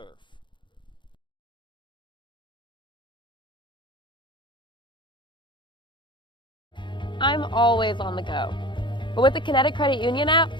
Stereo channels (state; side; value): late; right; 0.23 ms